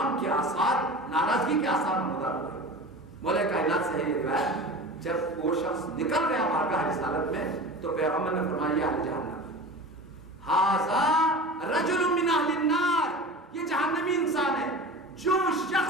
کے آثار, ناراضگی کے آثار نمودار ہوئے. مولا کائنات سے ہے یہ روایت, جب وہ شخص نکل گیا بارگاہ رسالت میں تو پیغمبر نے فرمایا اہل جہنم, ھذا رجل من اہل النار, یہ جہنمی انسان ہے. جو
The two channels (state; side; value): normal; both; correlation 0.34